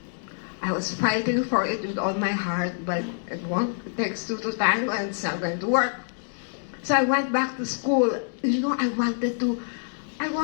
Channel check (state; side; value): silent; right; 61 dB below the other